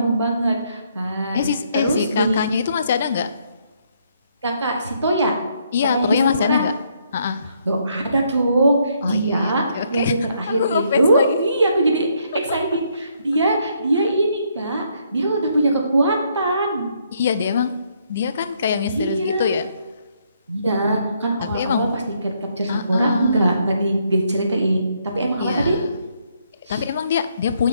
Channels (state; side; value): inverted; both; correlation -0.72